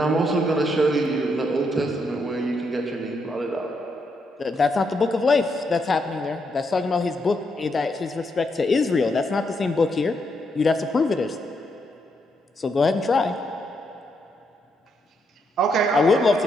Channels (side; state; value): both; normal; correlation 0.79